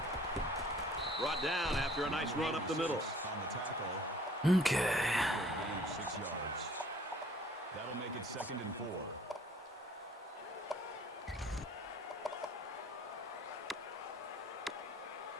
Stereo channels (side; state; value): both; normal; correlation 0.54